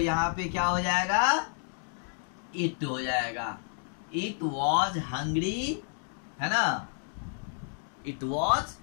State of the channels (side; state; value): right; silent; 58 dB below the other